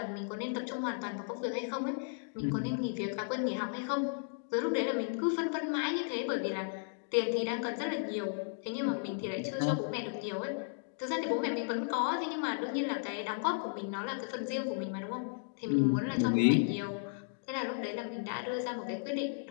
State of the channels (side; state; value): right; silent; digital silence